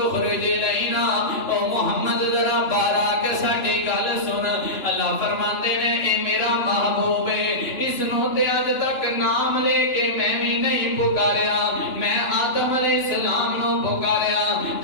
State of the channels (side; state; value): right; late; 2.9 ms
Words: اخرج لینا او محمد ذرا باہر آ کے ساڈی گل سن اللہ فرماندے نے اے میرا محبوب ہے اس نو تے اج تک نام لے کے میں بھی نہیں پکاریا میں آدم علیہ السلام نو پکاریا